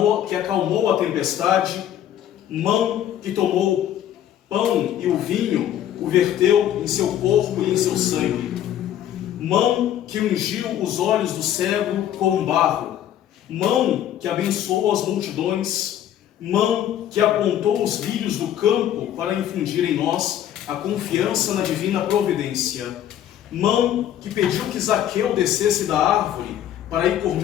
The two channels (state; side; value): quieter; right; 11.1 dB